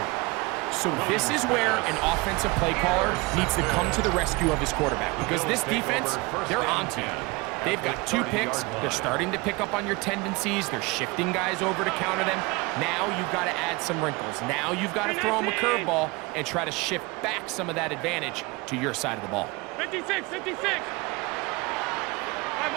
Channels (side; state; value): left; quieter; 25.1 dB